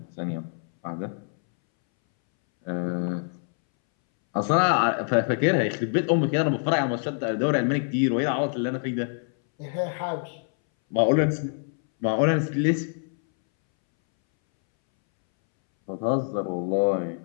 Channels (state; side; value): silent; right; 61 dB below the other